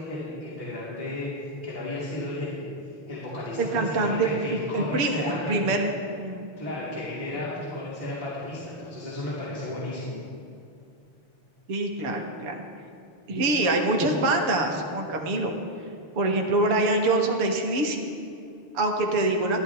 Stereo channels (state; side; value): late; left; 6.9 ms